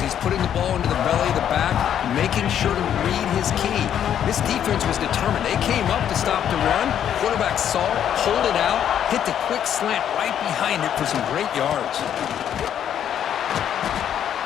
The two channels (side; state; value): right; quieter; 9.7 dB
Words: putting the ball into the belly of the back, making sure to read his key. This defense was determined. They came up to stop the run. Quarterback saw it, pulled it out, hit the quick slant right behind it for some great yards.